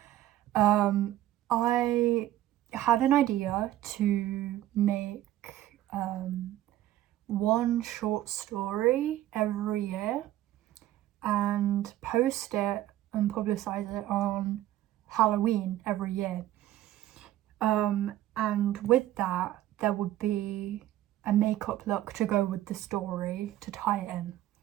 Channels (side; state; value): left; quieter; 14.0 dB